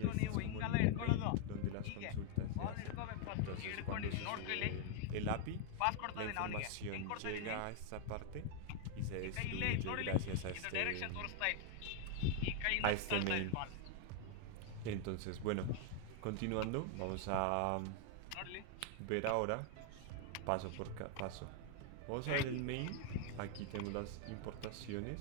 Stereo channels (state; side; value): different; both; correlation 0.00